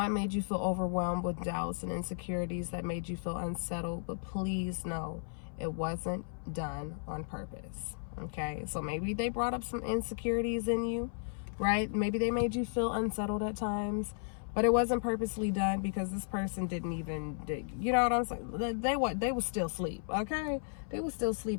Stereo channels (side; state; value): right; silent; 55 dB below the other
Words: made you feel overwhelmed with doubts and insecurities that made you feel unsettled, but please know it wasn't done on purpose. Okay, so maybe they brought up some insecurities in you, right? Maybe they made you feel unsettled at times, but it wasn't purposely done, because this person didn't even, you know what I'm saying? They were still asleep, okay? They were still